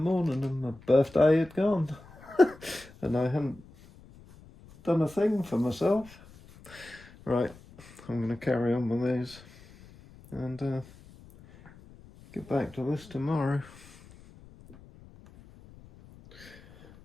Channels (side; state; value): left; noise; rumble, 22 dB below the sound